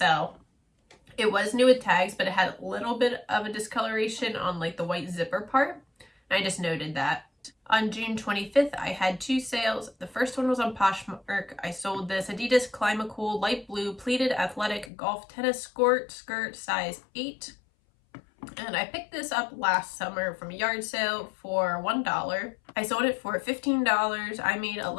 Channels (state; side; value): drops out; right; at 14.9 s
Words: It was new with tags, but it had a little bit of a discoloration on like the white zipper part. And I just noted that. On June 25th, I had 2 sales. The first one was on Poshmark. I sold this Adidas Climacool light blue pleated athletic golf tennis skirt size 8. And I picked this up last summer from a yard sale for $1. I sold it for $15. I made